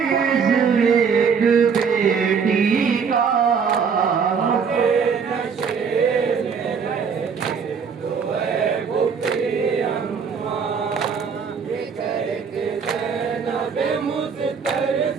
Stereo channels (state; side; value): quieter; left; 6.2 dB